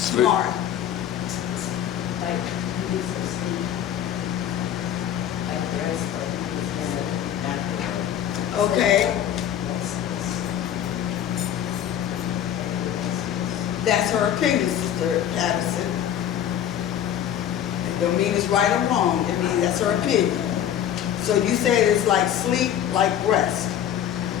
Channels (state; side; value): quieter; right; 10.2 dB